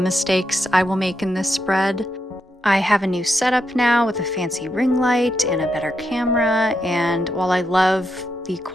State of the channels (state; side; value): normal; both; correlation 0.83